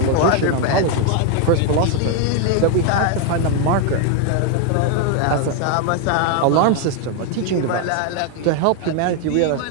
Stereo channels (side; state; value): both; different; correlation 0.01